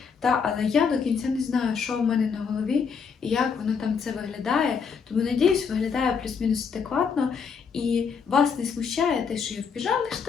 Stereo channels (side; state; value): right; quieter; 6.0 dB